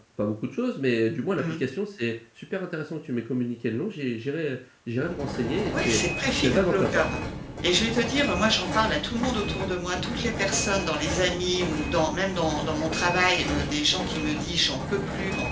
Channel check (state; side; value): identical; both; correlation 1.00